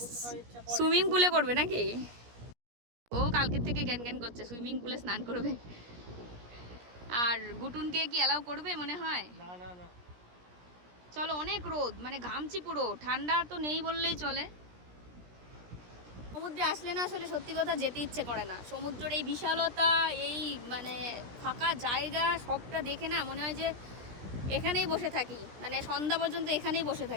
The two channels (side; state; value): left; late; 17 ms